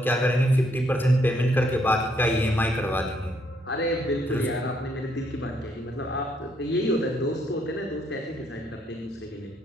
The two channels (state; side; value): normal; both; correlation 0.71